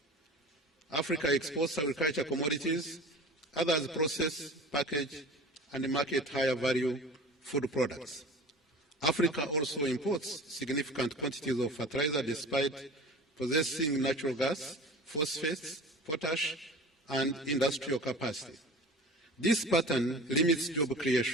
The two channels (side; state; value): both; normal; correlation 0.38